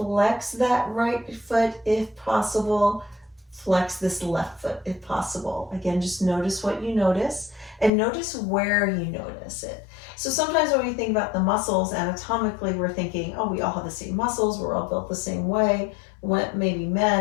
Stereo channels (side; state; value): right; drops out; at 7.9 s